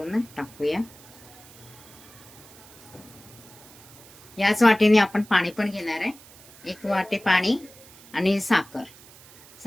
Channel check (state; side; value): noise; right; hiss, 22 dB below the sound